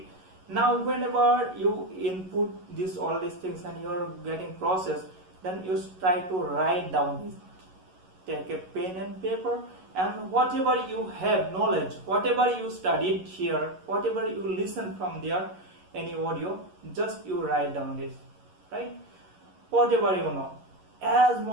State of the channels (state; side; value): late; left; 11 ms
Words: Now whenever you input this all these things and you are getting processed, then you try to write down this. Take a pen and paper, and whatever you have knowledge, whatever you studied here, whatever you listen from there, any audio, just you write down this, right? Whatever you know, as